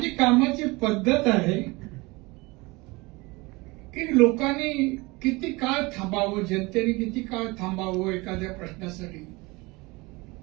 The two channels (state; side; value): quieter; left; 24.1 dB